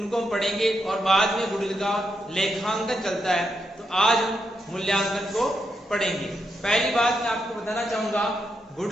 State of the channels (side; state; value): both; normal; correlation 0.83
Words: हम पढ़ेंगे और बाद में गुडविल का लेखांकन चलता है, तो आज हम मूल्यांकन को पढ़ेंगे। पहली बात मैं आपको बताना चाहूंगा,